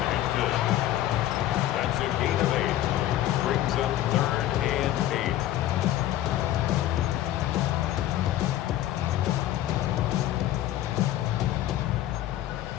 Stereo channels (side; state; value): right; quieter; 13.3 dB